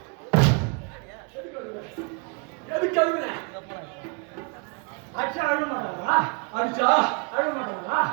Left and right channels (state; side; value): quieter; left; 33.0 dB